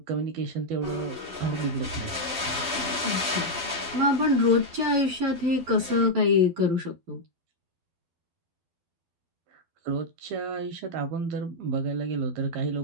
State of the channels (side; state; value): left; late; 12 ms